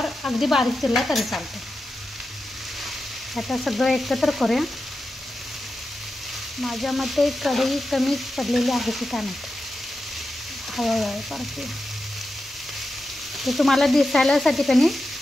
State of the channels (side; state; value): both; normal; correlation 0.90